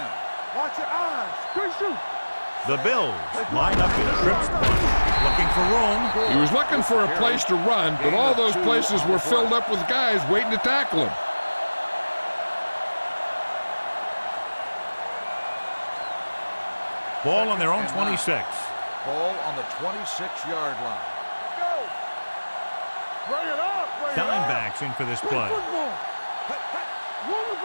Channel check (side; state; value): both; inverted; correlation -1.00